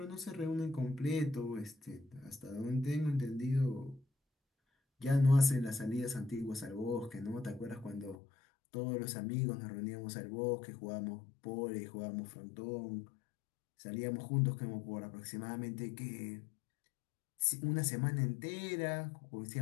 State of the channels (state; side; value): drops out; right; at 8.2 s